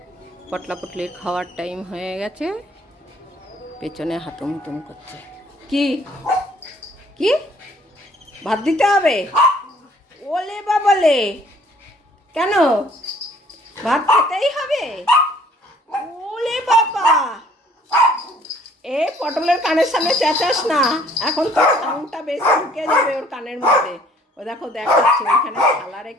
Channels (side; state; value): both; normal; correlation 0.58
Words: পটলা পটলির খাওয়ার টাইম হয়ে গেছে, পেছনে হাতুম হুতুম করছে। কি কি ভাত দিতে হবে? ওলে বাবালে, কেন ভাত খেতেই হবে? ওলে বাবা, এ পটলের কানের সামনে চেঁচাস না, এখন তো সাউন্ডটা বেশি ঢুকে যাবে ওর কানের মধ্যে। ও দেখো দেখাচ্ছে, ওইখানে থালা